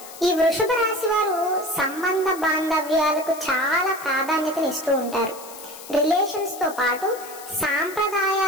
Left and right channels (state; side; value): noise; left; hiss, 16 dB below the sound